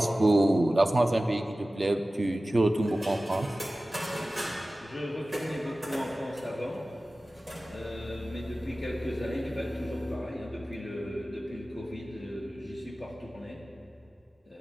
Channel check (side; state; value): both; normal; correlation 0.96